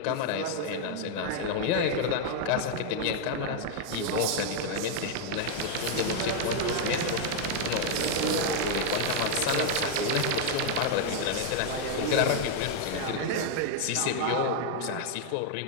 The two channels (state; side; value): different; both; correlation 0.00